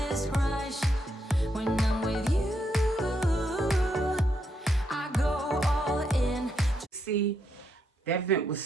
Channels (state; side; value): normal; both; correlation 0.79